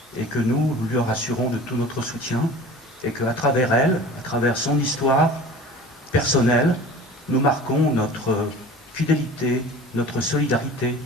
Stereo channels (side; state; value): both; normal; correlation 0.41